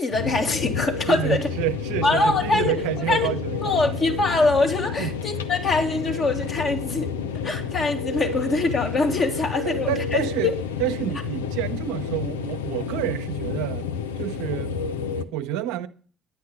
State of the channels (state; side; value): normal; both; correlation 0.47